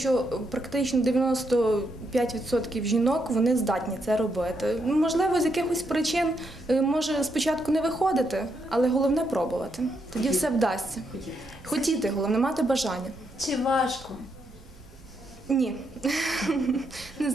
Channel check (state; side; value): noise; right; rumble, 21 dB below the sound